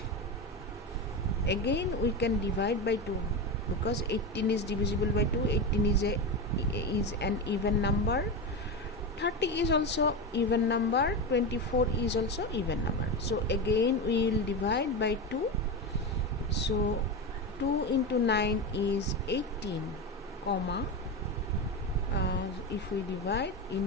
Again we can divide by 2 because 18 is divisible by 2. 18 is an even number. 30 is also even number. 24 is also even number. So again we will divide by 2. So 2 into 9 is 18, comma. If we divide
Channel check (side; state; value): both; normal; correlation 0.18